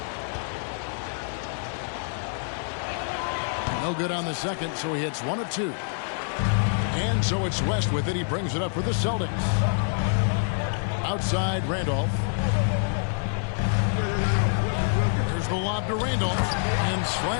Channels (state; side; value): silent; right; digital silence